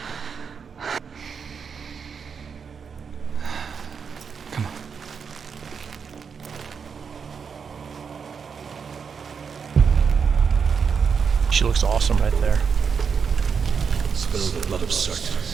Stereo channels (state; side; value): quieter; left; 6.2 dB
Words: Come on. She looks awesome right there. Spill the blood of Surtr